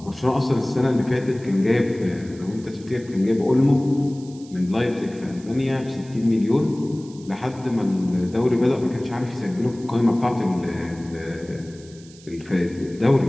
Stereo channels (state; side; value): noise; right; hiss, 23 dB below the sound